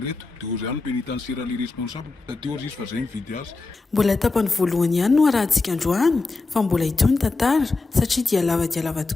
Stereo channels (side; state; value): right; quieter; 3.6 dB